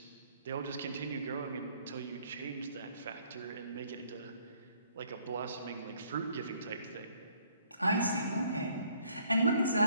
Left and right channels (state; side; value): inverted; both; correlation -0.63